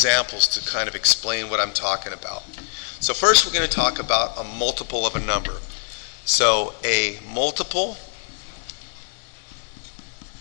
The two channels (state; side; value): silent; right; 58 dB below the other